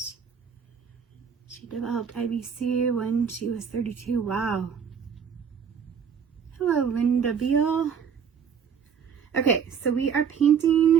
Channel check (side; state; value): left; quieter; 7.1 dB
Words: She developed IBC when she was 32. Wow. Hello, Linda Beal. Okay, so we are